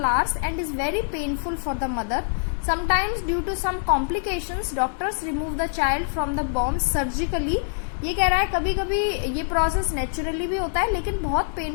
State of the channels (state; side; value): silent; right; digital silence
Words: hours and is very painful for the mother. Sometimes due to some complications doctors remove the child from the womb surgically. ये कह रहा है कभी कभी ये प्रोसेस नेचुरली भी होता है लेकिन बहुत